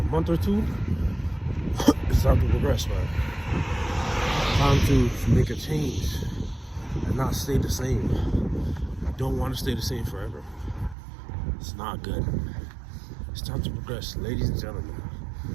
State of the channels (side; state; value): left; drops out; at 11.0 s